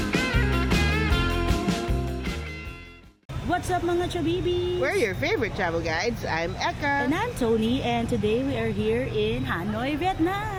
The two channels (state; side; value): identical; both; correlation 1.00